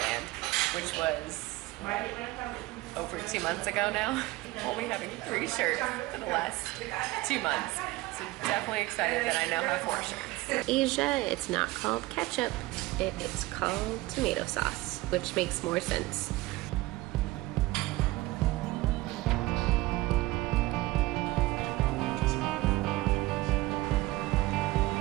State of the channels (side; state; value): left; quieter; 19.4 dB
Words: which was over 2 months ago now. Only having 3 shirts in the last 2 months. So definitely excited that I now have 4 shirts. Asia, it's not called ketchup. It is called tomato sauce, which makes more sense.